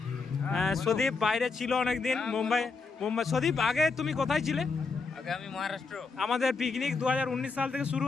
সদীপ বাইরে ছিল অনেকদিন, মুম্বাই। সদীপ, আগে তুমি কোথায় ছিলে? আমি মহারাষ্ট্র। আমাদের পিকনিক 2019 সাল থেকে শুরু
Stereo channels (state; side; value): quieter; right; 4.5 dB